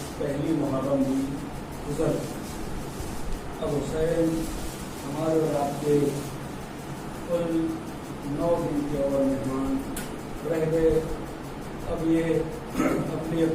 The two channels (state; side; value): identical; both; correlation 1.00